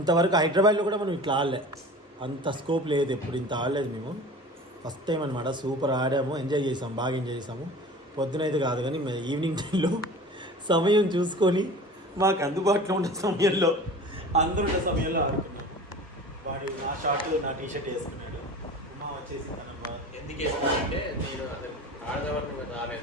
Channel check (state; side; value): normal; both; correlation 0.38